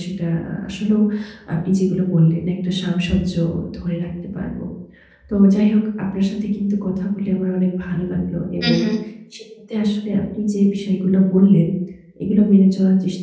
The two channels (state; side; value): identical; both; correlation 1.00